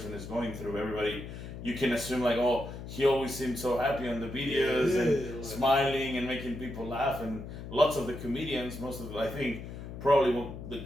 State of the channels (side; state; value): left; noise; hum, 10 dB below the sound